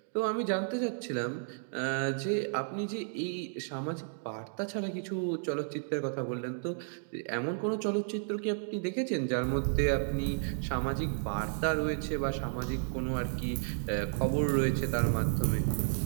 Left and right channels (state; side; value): silent; left; digital silence